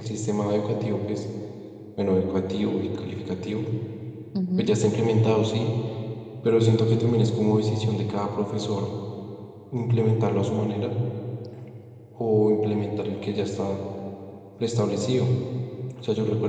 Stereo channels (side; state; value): both; identical; correlation 1.00